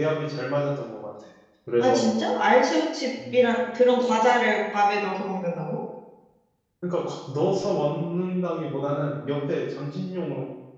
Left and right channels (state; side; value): identical; both; correlation 1.00